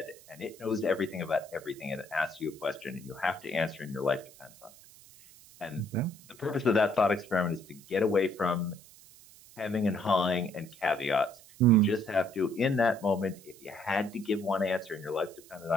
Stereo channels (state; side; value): noise; right; hiss, 22 dB below the sound